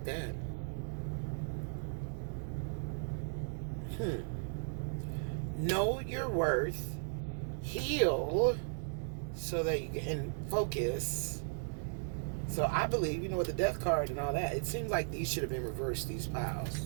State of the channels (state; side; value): silent; left; digital silence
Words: that. Know your worth, heal, so that you can focus. So I believe, with the death card and all that, it seems like these should have been reversed, these piles.